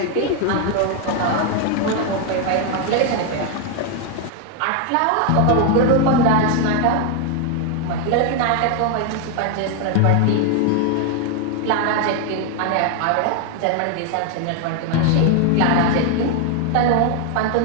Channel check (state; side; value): different; both; correlation 0.01